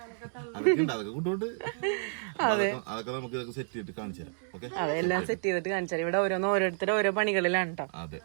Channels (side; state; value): left; silent; digital silence